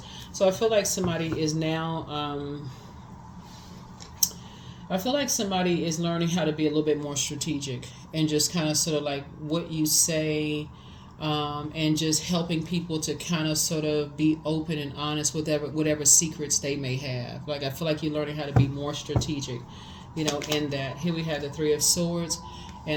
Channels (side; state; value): both; identical; correlation 1.00